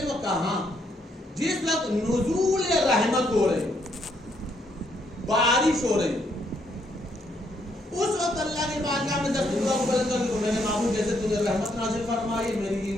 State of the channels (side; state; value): both; normal; correlation 0.73